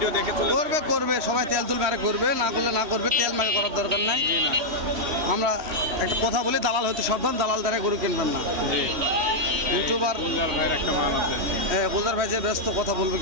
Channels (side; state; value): left; late; 3.1 ms